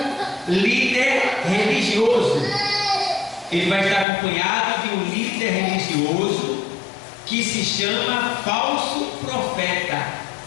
líder religioso. Ele vai estar acompanhado de um líder religioso que se chama falso profeta.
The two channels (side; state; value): right; drops out; at 4.0 s